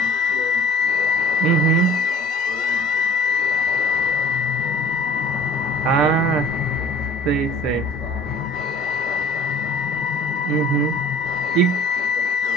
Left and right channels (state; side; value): normal; both; correlation 0.47